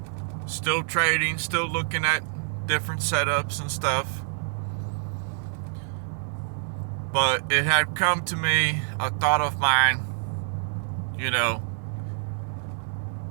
Still trading. Still looking at different setups and stuff. But it had come to me, a thought of mine,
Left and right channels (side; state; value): left; silent; digital silence